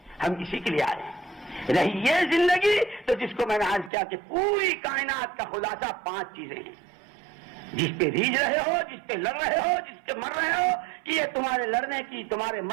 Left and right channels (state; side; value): drops out; left; at 3.9 s